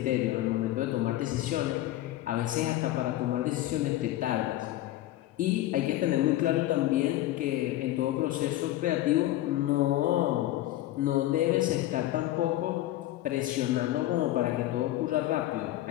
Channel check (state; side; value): quieter; right; 14.9 dB